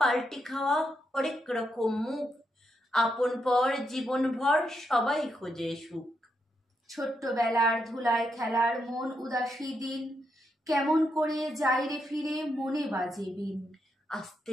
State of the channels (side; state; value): both; normal; correlation 0.81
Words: খাওয়া হরেক রকম মুখ, আপন পর জীবন ভর সবাই খোঁজে সুখ। ছোট্টবেলার ধুলায় খেলার মন উদাসী দিন, কেমন করে যাই রে ফিরে মনে বাজে বিন। আস্তে